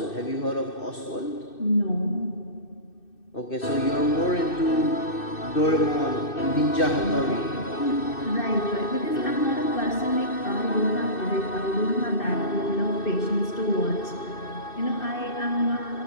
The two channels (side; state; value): right; late; 2.6 ms